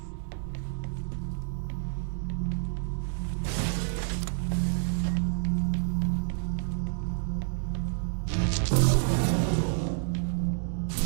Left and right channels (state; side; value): silent; left; digital silence